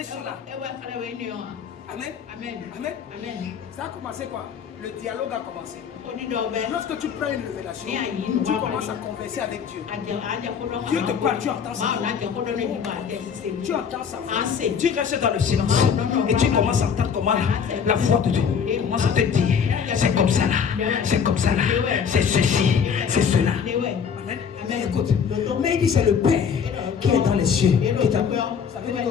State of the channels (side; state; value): right; quieter; 7.0 dB